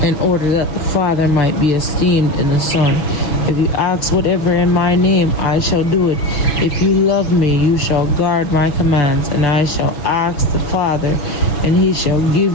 in order that the Father might be esteemed in the Son. If you ask whatever in my name, I shall do it. If you love me, you shall guard my commands, and I shall ask the Father, and he shall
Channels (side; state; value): right; late; 6.8 ms